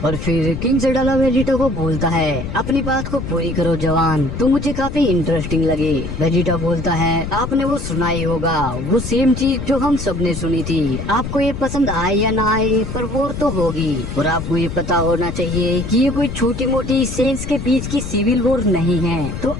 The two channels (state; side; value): noise; left; rumble, 7 dB below the sound